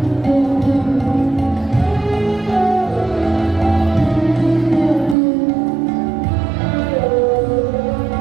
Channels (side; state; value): left; drops out; at 5.2 s